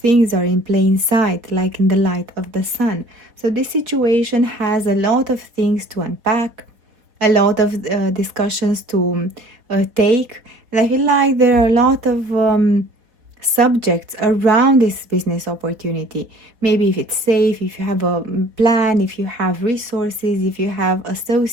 are in plain sight, like in the light of the sun. So this situation has a lot of things to unpack, a lot of discussions to take, and I feel like there are a lot of subjects around this business opportunity. Maybe if it's safe, if you have a plan, if you have resources, if you have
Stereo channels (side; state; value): left; late; 4.0 ms